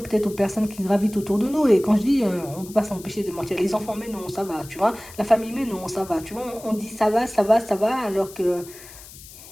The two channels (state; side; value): noise; left; hiss, 18 dB below the sound